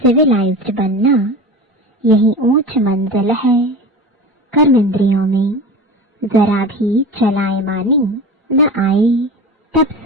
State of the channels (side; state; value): both; normal; correlation 0.31